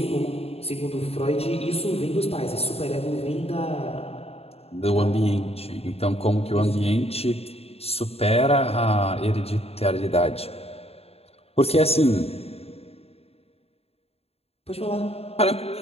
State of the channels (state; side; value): late; right; 0.29 ms